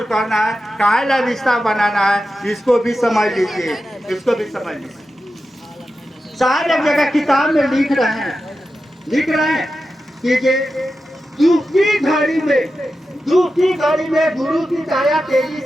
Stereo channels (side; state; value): both; normal; correlation 0.91